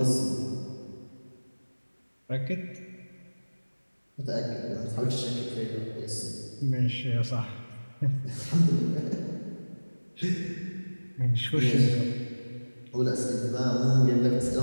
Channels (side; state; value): both; inverted; correlation -1.00